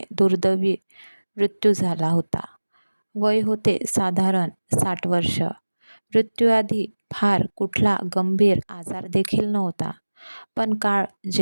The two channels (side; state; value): both; inverted; correlation -1.00